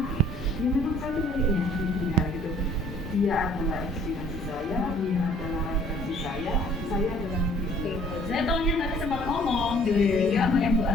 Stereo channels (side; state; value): both; normal; correlation 0.57